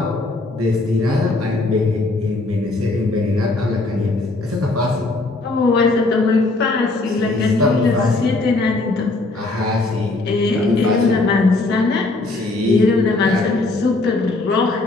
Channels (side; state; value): right; quieter; 3.1 dB